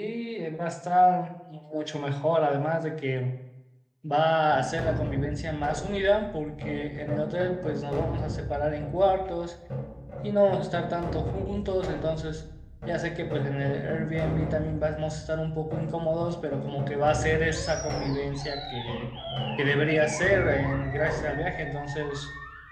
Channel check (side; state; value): both; identical; correlation 1.00